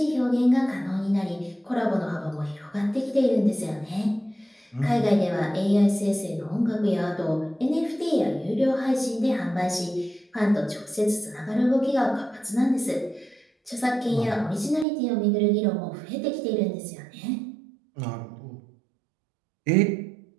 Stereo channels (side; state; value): left; drops out; at 14.9 s